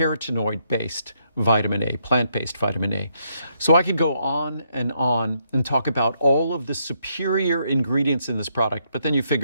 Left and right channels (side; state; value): both; inverted; correlation -0.75